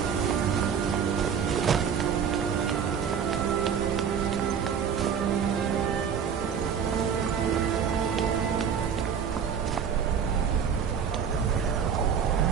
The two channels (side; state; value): left; quieter; 7.3 dB